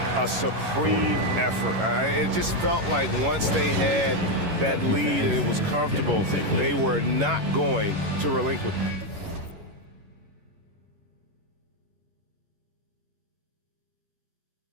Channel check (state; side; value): late; left; 11 ms